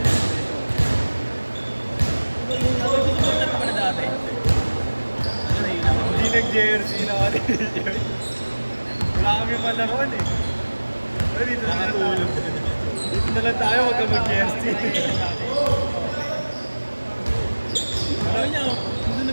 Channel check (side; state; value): both; inverted; correlation -1.00